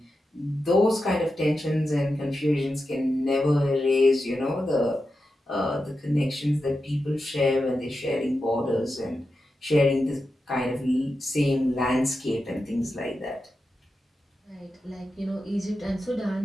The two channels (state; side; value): normal; both; correlation 0.90